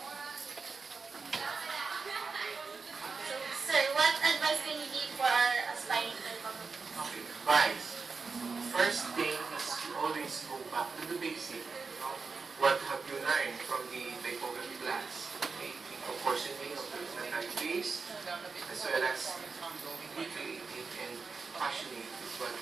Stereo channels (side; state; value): left; quieter; 4.7 dB